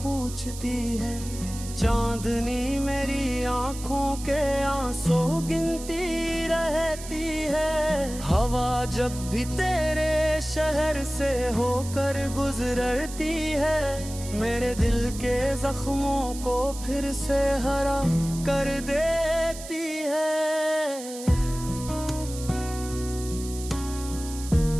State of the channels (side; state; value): right; noise; hiss, 13 dB below the sound